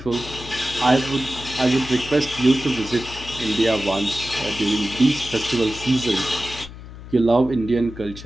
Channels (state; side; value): noise; left; hum, 14 dB below the sound